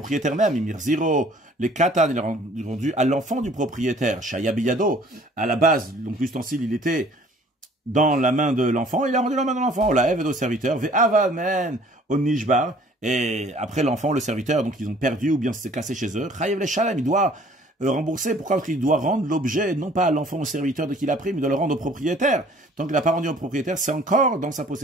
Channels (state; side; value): normal; both; correlation 0.54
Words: même, les katan, il a rendu à l'enfant du propriétaire, Shayabiyado, à la base, donc l'ustensile, il était dans la main de l'enfant, il a rendu la main de l'enfant, la Ève au serviteur, Ve'avamen au Nishbar, et après l'enfant, le serviteur, donc ils ont perdu ou bien c'est cassé chez eux, Chayev le Shalem, il doit rembourser, pourquoi? Parce qu'il doit rendre l'objet, non pas à l'enfant au serviteur de qui il a pris, mais il doit le rendre au propriétaire. Tant qu'il n'a pas rendu au propriétaire, c'est encore dans sa